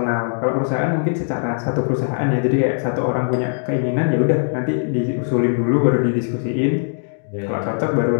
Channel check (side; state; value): right; silent; digital silence